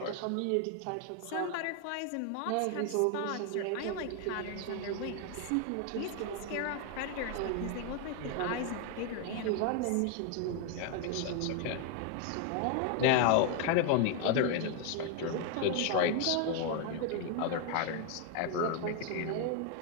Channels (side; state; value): both; different; correlation 0.01